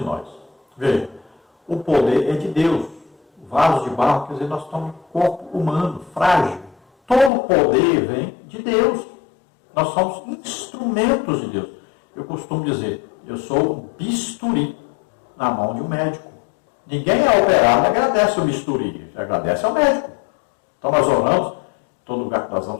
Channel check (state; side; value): drops out; right; at 7.3 s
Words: nós. Veja, o poder é de Deus. O vaso de barro, quer dizer, nós estamos um corpo humano, frágil. Todo o poder vem de Deus. Nós somos instrumentos de Deus. Eu costumo dizer, eu sou um bisturi na mão de um médico. Ninguém é operado e agradece o bisturi, agradece ao médico. Então nós oramos, todo lugar que nós